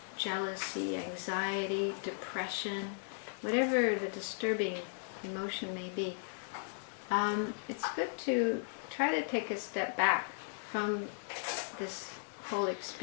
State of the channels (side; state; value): right; silent; digital silence